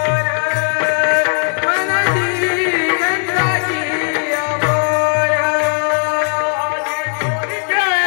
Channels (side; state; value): right; silent; 62 dB below the other